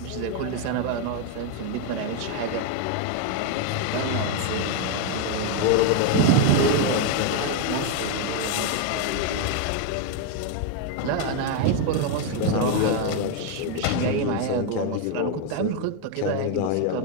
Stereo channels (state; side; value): different; both; correlation 0.01